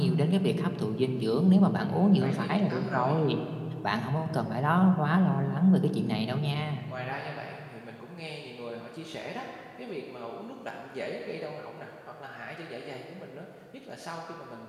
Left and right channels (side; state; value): both; identical; correlation 1.00